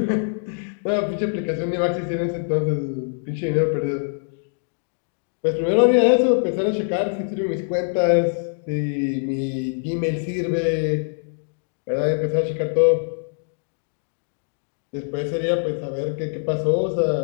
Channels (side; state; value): right; silent; digital silence